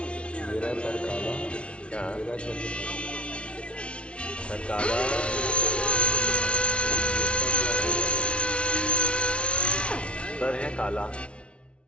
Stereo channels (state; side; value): late; right; 0.059 ms